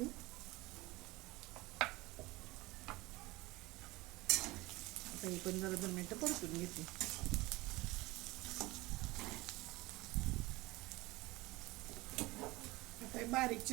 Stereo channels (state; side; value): quieter; left; 21.0 dB